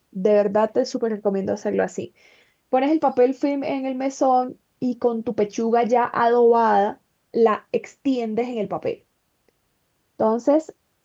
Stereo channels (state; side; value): identical; both; correlation 1.00